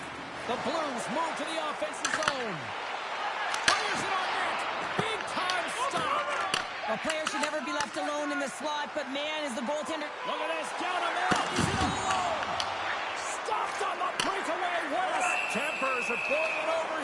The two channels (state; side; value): identical; both; correlation 1.00